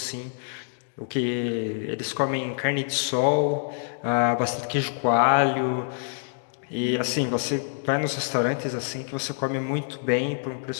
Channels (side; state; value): right; silent; digital silence